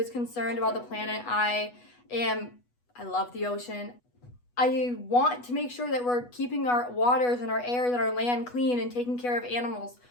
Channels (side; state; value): right; late; 8.2 ms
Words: concerned about the planet. I love the ocean. I want to make sure that we're keeping our waters and our air and our land clean and taking care of animals.